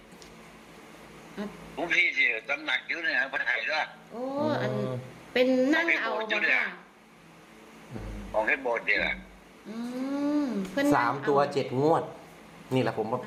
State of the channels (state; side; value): identical; both; correlation 1.00